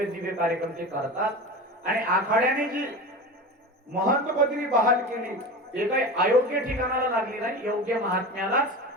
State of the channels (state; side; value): normal; both; correlation 0.29